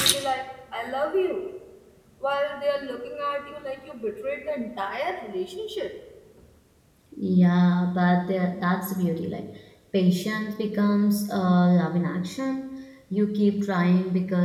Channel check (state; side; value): identical; both; correlation 1.00